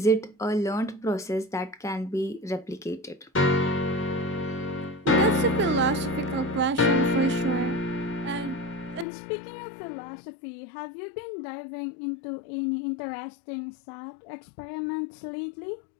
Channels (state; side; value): drops out; right; at 9.1 s